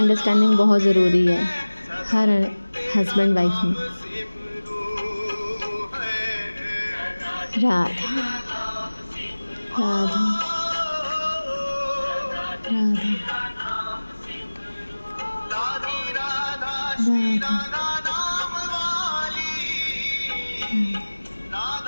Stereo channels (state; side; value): inverted; both; correlation -1.00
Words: बहुत ज़रूरी है हर हस्बैंड वाइफ में। राधा राधा राधा राधा।